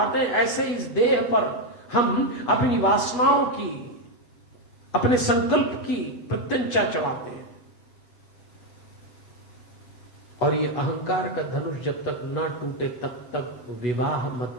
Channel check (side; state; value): right; late; 8.2 ms